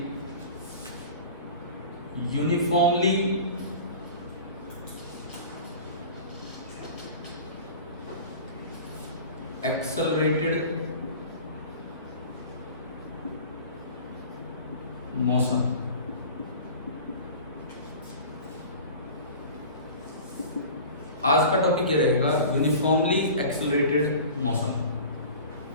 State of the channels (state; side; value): inverted; both; correlation -0.39